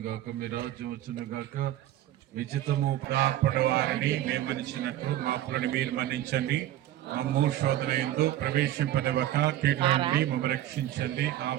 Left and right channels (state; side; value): quieter; left; 13.2 dB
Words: గాక, మీ రాజ్యం వచ్చును గాక, మీ చిత్తము ప్రాపడి వారిని మేమనిచ్చినట్లు మా అప్పులను మీరు మన్నించండి. మమ్ము శోధన యందు ప్రవేశింపనివ్వక కీడుల నుండి మమ్మల్ని రక్షించండి.